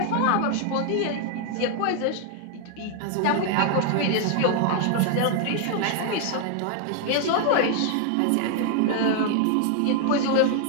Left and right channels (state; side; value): different; both; correlation 0.00